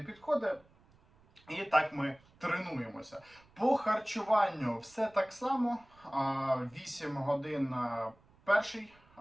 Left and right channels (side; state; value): right; noise; rumble, 29 dB below the sound